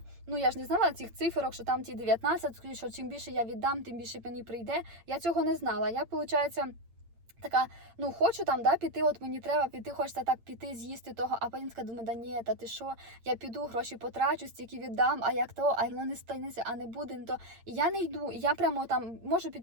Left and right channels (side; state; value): left; late; 8.8 ms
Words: Я ж не знала цих циферок, що там ті 19, що чим більше я віддам, тим більше мені прийде. Я цього не знала. Я, виходить, така, ну хочу там, да, піти, от мені треба піти, хочеться так піти, з'їсти того, а потім така думаю, да ні, та ти що, я піду, гроші потрачу, стільки віддам, а як то, а воно не станеться, а не буде, не то. І я не йду, і я прямо там можу